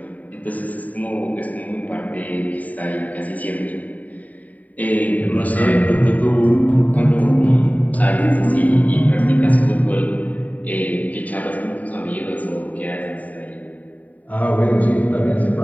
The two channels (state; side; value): late; right; 0.073 ms